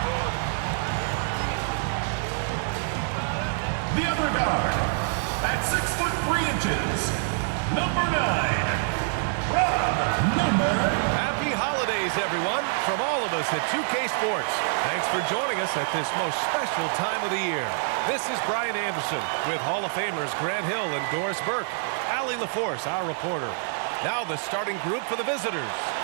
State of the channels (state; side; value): silent; left; digital silence